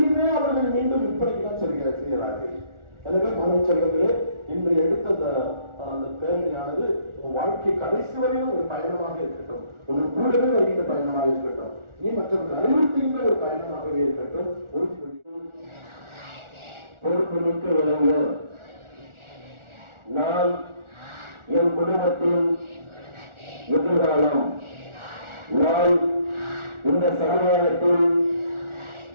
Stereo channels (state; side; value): late; left; 1.4 ms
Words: அவர்கள் மீண்டும் விற்பனைக்கு தான் செய்கிறார்கள். எனவே மாணவ செல்வங்களே, இன்று எடுத்த அந்த பேரணியானது உன் வாழ்க்கை கடைசி வரையும் ஒரு பயணமாக இருக்கட்டும், உன் கூடவே வருகின்ற பயணமாக இருக்கட்டும், நீ மற்றவர்கள் அறிவுறுத்துகின்ற ஒரு பயணமாகவே இருக்கட்டும். பொறுப்புமிக்க விளங்கு நான் என் குடும்பத்தின் எதிர்காலம், நான் இந்த சமுதாயத்தின்